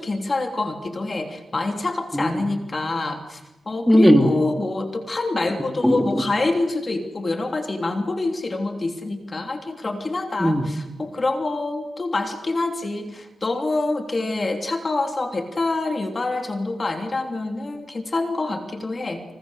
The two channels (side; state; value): both; normal; correlation 0.95